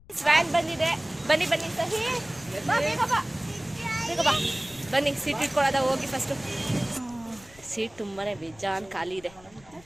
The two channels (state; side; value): noise; left; rumble, 24 dB below the sound